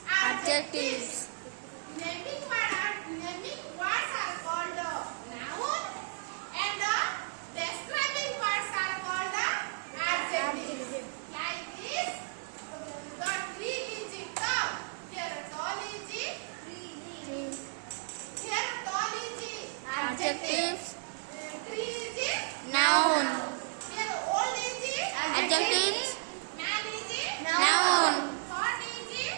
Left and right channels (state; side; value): silent; left; digital silence